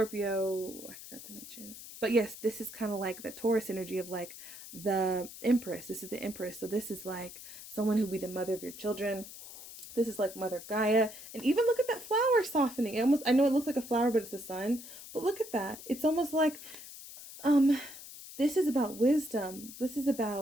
I forgot to mention. But yes, this is kind of like the Taurus energy of like the Empress. This is the Empress. So this is like someone who will be the mother of your children. This is like Mother Gaia. And even look at that flower softening. It almost, I know it looks like a flower, but it's the sun. But look at that. It's almost like, this is about wisdom. This is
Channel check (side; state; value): left; noise; hiss, 14 dB below the sound